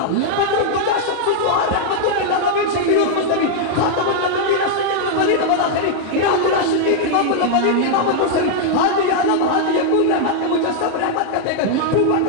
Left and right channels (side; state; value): both; different; correlation -0.01